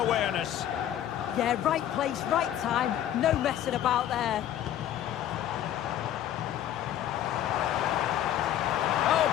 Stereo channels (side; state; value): right; quieter; 11.4 dB